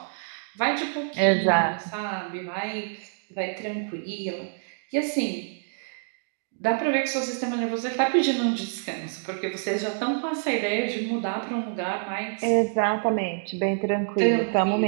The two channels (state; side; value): silent; left; digital silence